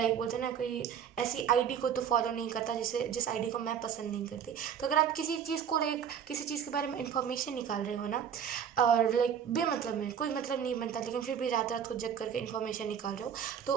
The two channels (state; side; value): quieter; left; 8.1 dB